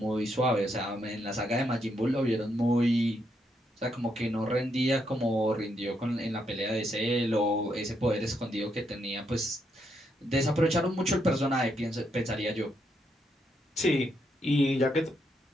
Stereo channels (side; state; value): both; normal; correlation 0.78